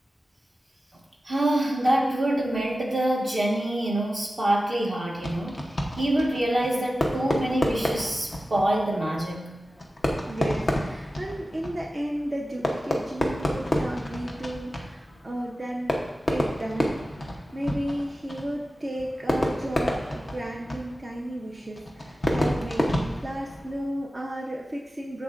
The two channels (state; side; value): normal; both; correlation 0.94